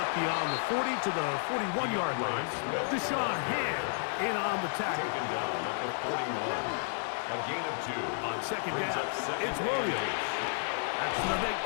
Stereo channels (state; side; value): silent; right; digital silence